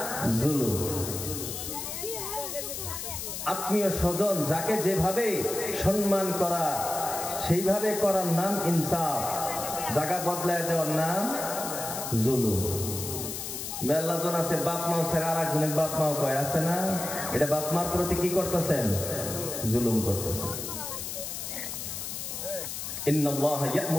জুলুম। আত্মীয় স্বজন যাকে যেভাবে সম্মান করা সেইভাবে করার নাম ইনসাফ, জায়গা বদলায় দেওয়ার নাম জুলুম। মেলাজন আছে বাপ মাও ছেড়ে আর একজনের বাপ মাও কয়, আছে না? এটা বাপ মার প্রতি কি করতেছেন? জুলুম করতেছেন। ইন্নাল্লাহা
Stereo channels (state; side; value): noise; left; hiss, 6 dB below the sound